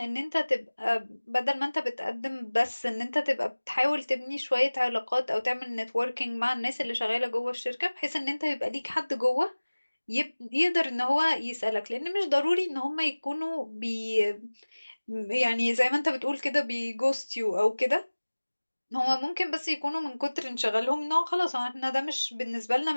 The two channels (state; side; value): inverted; both; correlation -1.00